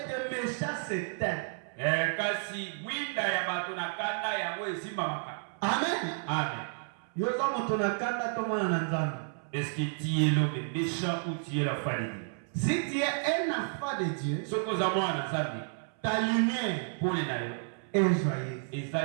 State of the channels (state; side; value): silent; left; 57 dB below the other